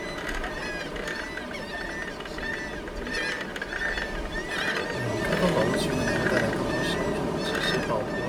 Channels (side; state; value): both; identical; correlation 1.00